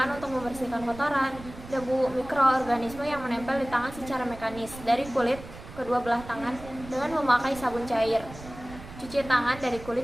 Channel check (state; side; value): noise; right; rumble, 15 dB below the sound